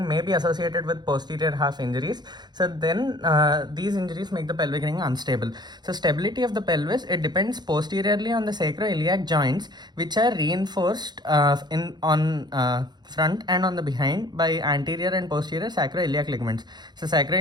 may be associated with posterior half injuries. So then these injuries make the pelvic ring unstable. So stability of the pelvis, it depends posteriorly on the sacroiliac joints, which are reinforced on front and on the behind by anterior and posterior sacroiliac ligaments. So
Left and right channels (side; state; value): left; late; 0.21 ms